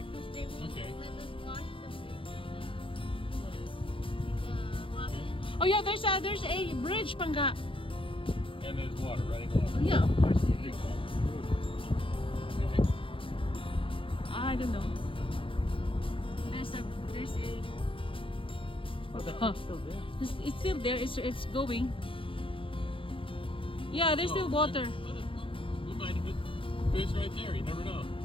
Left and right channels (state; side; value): late; right; 0.25 ms